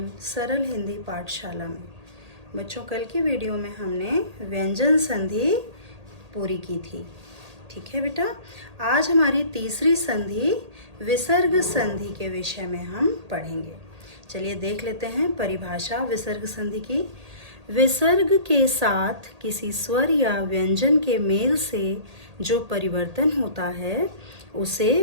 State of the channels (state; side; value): late; left; 1.8 ms